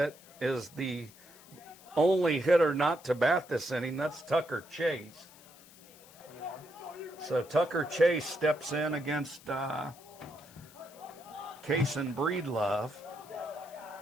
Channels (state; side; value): noise; left; hiss, 22 dB below the sound